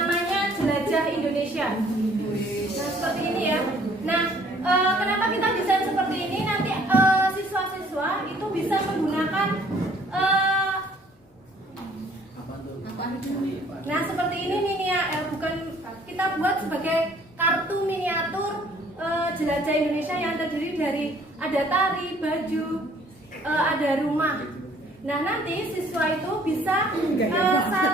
Jelajah Indonesia. Nah, seperti ini ya. Nah, kenapa kita desain seperti ini? Nanti siswa-siswa itu bisa menggunakan nah, seperti ini bukan kita buat sebagai kartu miniatur Jelajah Indonesia yang terdiri dari ada tari, baju, ada rumah. Nah, nanti siswa itu bisa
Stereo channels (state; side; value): normal; both; correlation 0.58